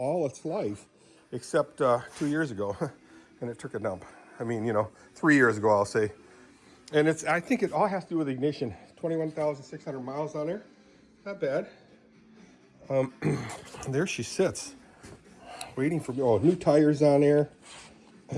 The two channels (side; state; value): both; identical; correlation 1.00